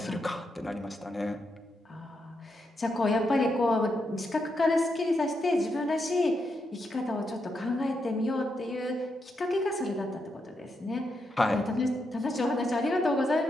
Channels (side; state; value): both; normal; correlation 0.82